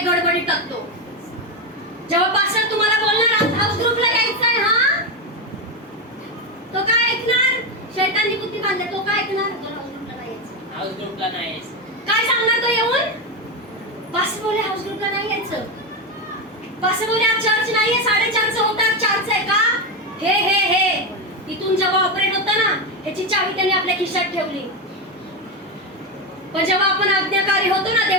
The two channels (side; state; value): both; normal; correlation 0.12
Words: गडबडी टाकतो. जेव्हा पास्टर तुम्हाला बोलणार आज हाऊस ग्रुपला यायचंय, हा तो काय ऐकणार? शैतानी बुद्धी बांधले, तो काय ऐकणार? तो हाऊस ग्रुपला नाही यायचं. हाऊस ग्रुपला नाही. काय सांगणार तो येऊन? पास्टर बोले हाऊस ग्रुपला नाही यायचं. पास्टर बोले आज चर्च नाहीये, 4:30 होतात, 4 आहे का? हे इथून जेव्हा ऑपरेट होतं ना, ह्याची चावी त्याने आपल्या खिशात ठेवली. पण जेव्हा आपण आज्ञाकारी होतो ना,